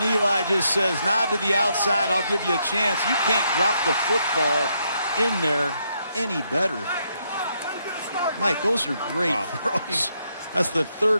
Eli just says, nod to the outside. I'll give you a chance. You can't drop the football in there any better. Mike, those are great throws. That's the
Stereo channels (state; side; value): inverted; both; correlation -0.76